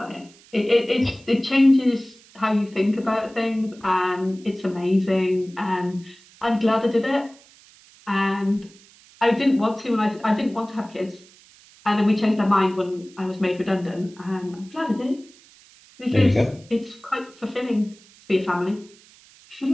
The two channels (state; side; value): noise; right; hiss, 26 dB below the sound